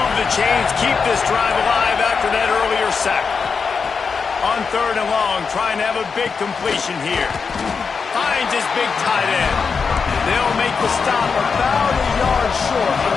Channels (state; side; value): quieter; right; 5.4 dB